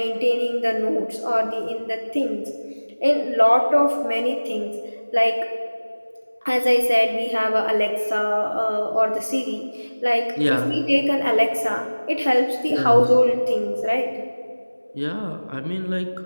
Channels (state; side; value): inverted; both; correlation -1.00